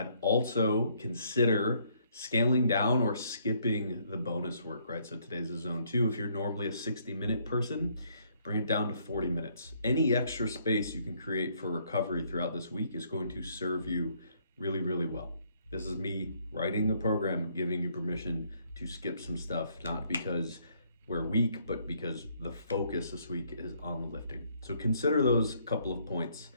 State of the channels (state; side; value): inverted; both; correlation -0.67